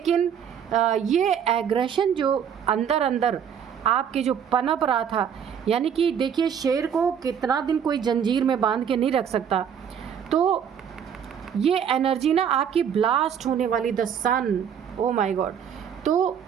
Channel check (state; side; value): quieter; left; 8.2 dB